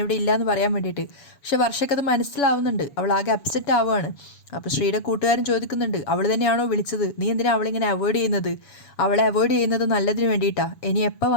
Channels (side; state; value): right; late; 7.1 ms